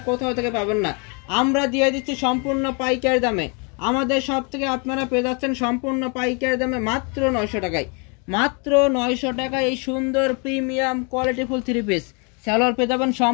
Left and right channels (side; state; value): right; quieter; 34.4 dB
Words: কোথাও থেকে পাবেন না। আমরা দিয়ে দিচ্ছি সম্পূর্ণ পাইকারি দামে। আমাদের সব থেকে আপনারা পেয়ে যাচ্ছেন সম্পূর্ণ পাইকারি দামে মাত্র 900 টাকায়। মাত্র 900 টাকায় এই সুন্দর প্রিমিয়াম কোয়ালিটিফুল থ্রি পিস। সালোয়ার পেয়ে যাবেন